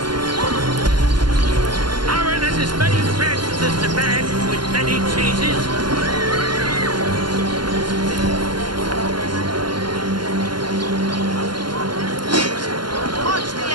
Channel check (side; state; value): left; late; 0.71 ms